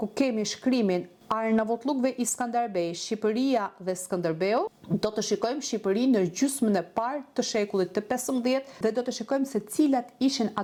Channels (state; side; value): identical; both; correlation 1.00